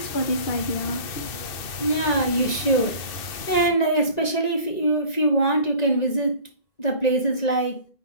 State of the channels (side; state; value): right; late; 1.9 ms